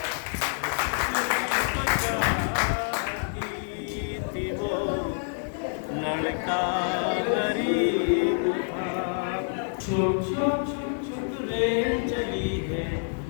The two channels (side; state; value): right; silent; digital silence